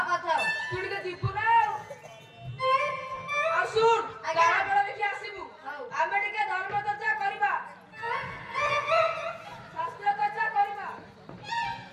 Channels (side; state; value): both; identical; correlation 1.00